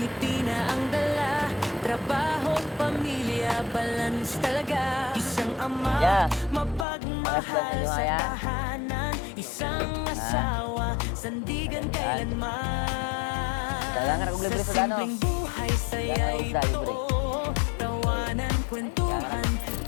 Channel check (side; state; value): right; drops out; at 6.9 s